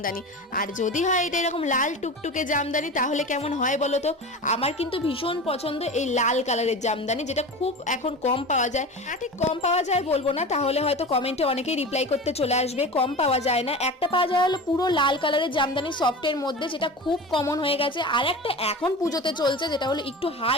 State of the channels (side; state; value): both; normal; correlation 0.31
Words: আর যদি হয় এটা এরকম লাল টুকটুকে জামদানি, তাহলে কেমন হয় বলো তো? আমার কিন্তু ভীষণ পছন্দ এই লাল কালারের জামদানি, যেটা খুব এখন কম পাওয়া যায়। ঠিক কম পাওয়া যায় বলবো না, তাহলে হয়তো কমেন্টে অনেকেই রিপ্লাই করতে চলে আসবে। কম পাওয়া যায় না, একটা পাওয়া যায় হলো পুরো লাল কালারের জামদানি সফটের মধ্যে, যেটা খুব কমন হয়ে গেছে। আর একটা এখন পুজোতে চলছে যেটা হলো একটু